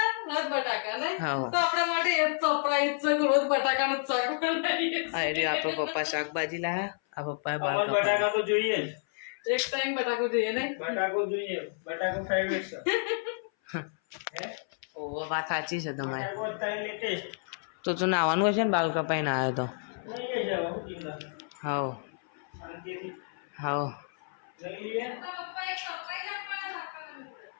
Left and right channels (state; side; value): silent; right; 58 dB below the other